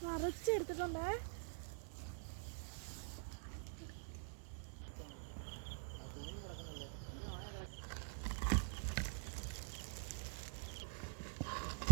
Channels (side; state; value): left; silent; digital silence